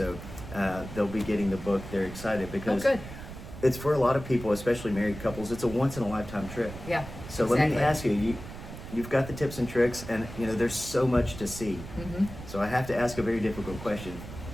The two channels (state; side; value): noise; right; rumble, 12 dB below the sound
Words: they'll be getting the book. They're excited because it's for a lot of people, especially married couples. It's a once in a lifetime trip. Yeah. So let me ask you, you've got the tips and tricks, and you know there's so much to see. So I have to ask a very difficult question.